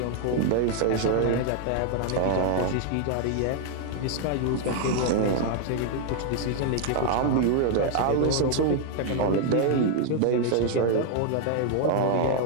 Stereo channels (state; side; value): different; both; correlation 0.00